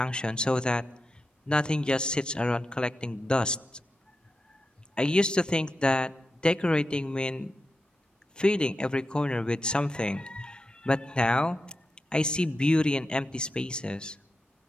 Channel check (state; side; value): normal; both; correlation 0.89